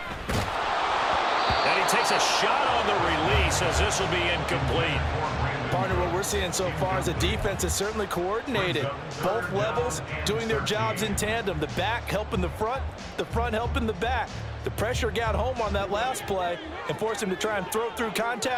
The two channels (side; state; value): both; identical; correlation 1.00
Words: takes a shot on the release as this will be incomplete. Partner, what we're seeing so far is the defense is certainly coordinated. Both levels doing their jobs in tandem. The back helping the front helping the back. The pressure got home on that last play and forced him to try and throw through